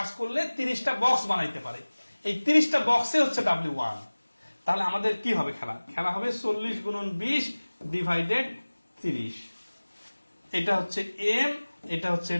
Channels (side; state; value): both; inverted; correlation -1.00